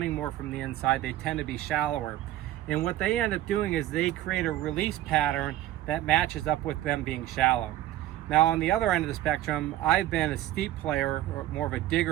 more from the inside, they tend to be shallower. And what they end up doing is they create a release pattern that matches up with them being shallow. Now, on the other end of the spectrum, I've been a steep player, or more of a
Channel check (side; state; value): left; quieter; 14.2 dB